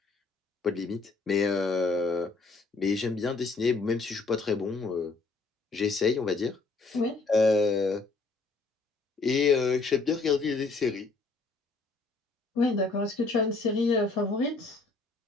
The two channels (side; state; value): right; quieter; 3.9 dB